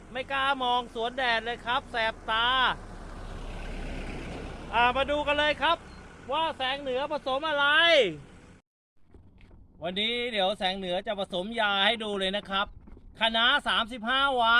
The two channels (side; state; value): both; identical; correlation 1.00